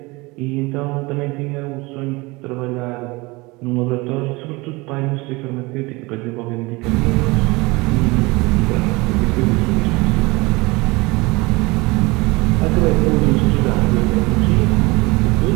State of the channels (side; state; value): left; quieter; 23.9 dB